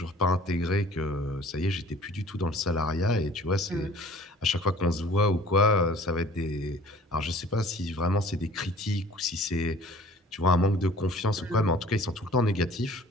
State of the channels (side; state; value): both; normal; correlation 0.49